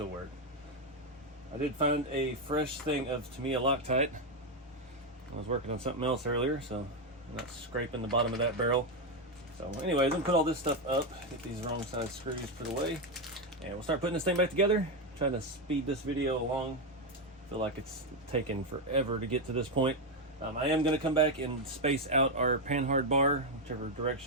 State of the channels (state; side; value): normal; both; correlation 0.06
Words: work. I did find a fresh thing of Tamiya Loctite. I was working on something else earlier, so I'm not scraping the bottom of that barrel. So anyways, I'm gonna put all this stuff up, get these wrong side screws put away, and we'll start putting this thing back together. Trying to speed this video along. I feel like it's taken forever to get to this point. I am gonna come back and space out our panhard bar, whichever